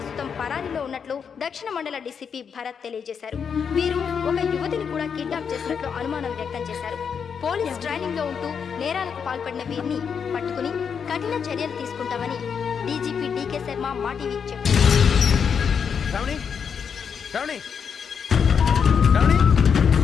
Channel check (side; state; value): right; quieter; 6.8 dB